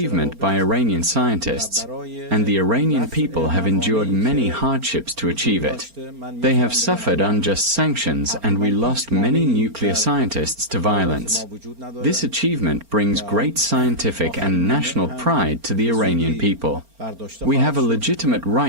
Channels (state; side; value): late; left; 4.3 ms